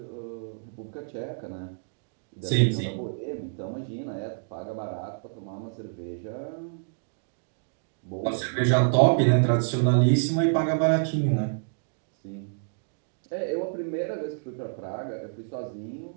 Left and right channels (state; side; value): silent; left; digital silence